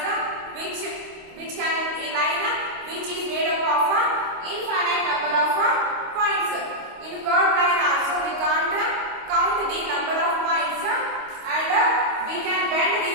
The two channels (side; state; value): left; late; 25 ms